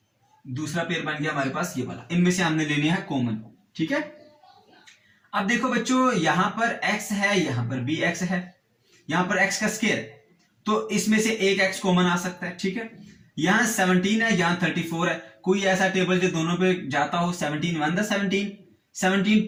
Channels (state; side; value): identical; both; correlation 1.00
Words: दूसरा पेयर बन गया हमारे पास ये वाला, इनमें से हमने लेने हैं कॉमन। ठीक है, अब देखो बच्चों यहां पर x है, यहां पर भी x है, यहां पर x का स्क्वायर, तो इसमें से एक x कॉमन आ सकता है। ठीक है, यहां 17 है, यहां 34 है, कोई ऐसा टेबल जो दोनों पे जाता हो, 17 1 द 17, 17